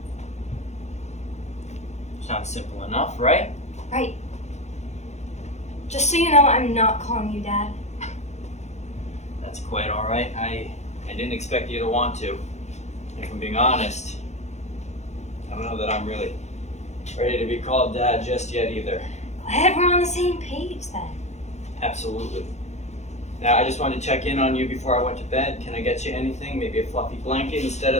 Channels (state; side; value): late; right; 0.33 ms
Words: Sounds simple enough, right? Right. Just so you know, I'm not calling you Dad. That's quite all right. I didn't expect you to want to. If I'm being honest, I don't know that I'm really ready to be called Dad just yet either. Glad we're on the same page then. Absolutely. Now, I just wanted to check in on you before I went to bed. Can I get you anything? Maybe a fluffy blanket instead